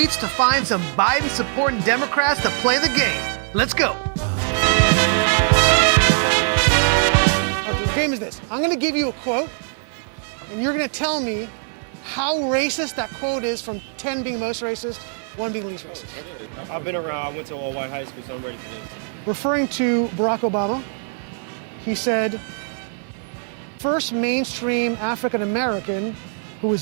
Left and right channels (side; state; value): left; silent; 61 dB below the other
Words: to find some Biden-supporting Democrats to play the game. Let's go. Okay, the game is this. I'm gonna give you a quote, and you're gonna tell me how racist that quote is, from 10 being most racist, 1 being least racist. I've been around. I went to all-white high school, so I'm ready for this. Referring to Barack Obama, he said, first mainstream African American who